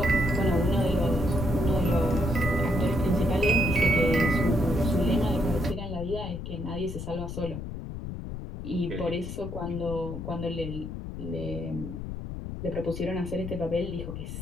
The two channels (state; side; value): noise; left; rumble, 7 dB below the sound